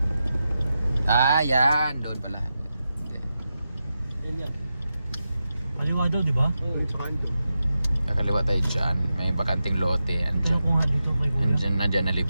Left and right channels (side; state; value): both; inverted; correlation -0.90